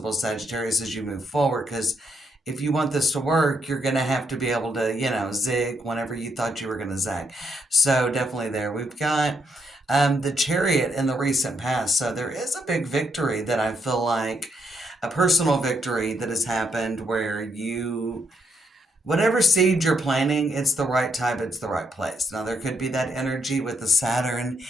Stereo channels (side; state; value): both; normal; correlation 0.77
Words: Sagittarius, as you move forward, because if you want this to work, you're going to have to be able to, zig whenever you thought you were going to zag. So definitely there. We've got the Chariot in the recent past. So there is a big victory that I feel like, a personal victory that has happened where whatever seed you're planting, it's the right time, it's the right place. Now, there could be that energy with the Saturn